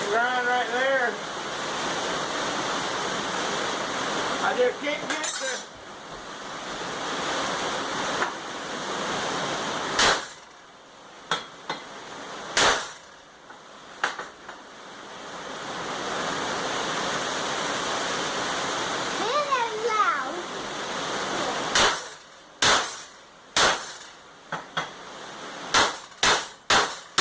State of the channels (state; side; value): identical; both; correlation 1.00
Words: grind right there. I just can't get